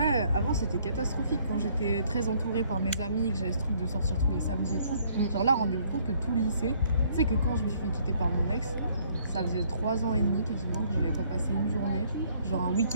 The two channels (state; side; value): inverted; both; correlation -0.64